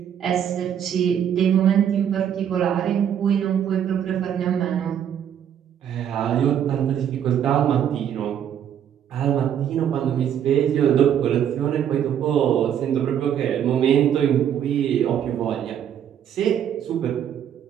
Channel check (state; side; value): quieter; left; 9.4 dB